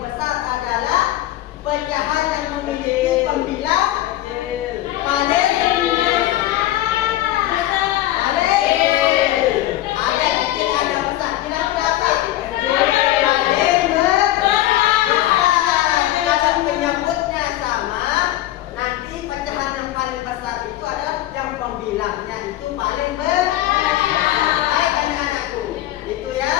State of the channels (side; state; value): right; quieter; 14.6 dB